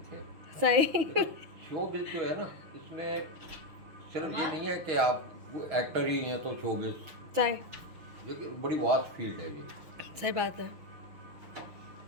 थे। सही शोबिज जो है ना, इसमें सिर्फ ये नहीं है कि आप एक्टर ही हैं तो शोबिज, सही ये बड़ी वास्ट फील्ड है ये। सही बात है।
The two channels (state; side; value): late; left; 6.2 ms